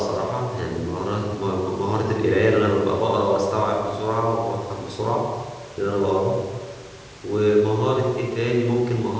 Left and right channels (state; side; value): identical; both; correlation 1.00